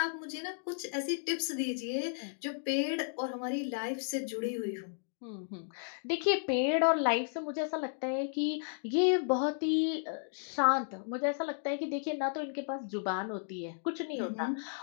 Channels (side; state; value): right; silent; digital silence